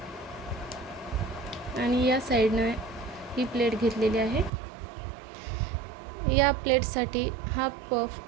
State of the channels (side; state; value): left; drops out; at 4.5 s